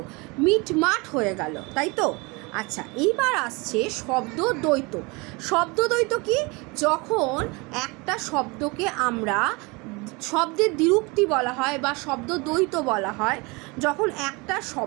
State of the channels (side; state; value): left; quieter; 27.0 dB